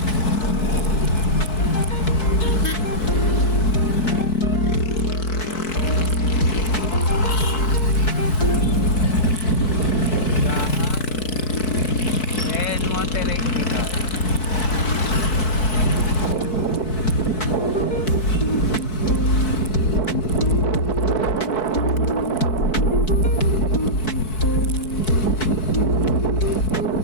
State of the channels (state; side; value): late; right; 4.6 ms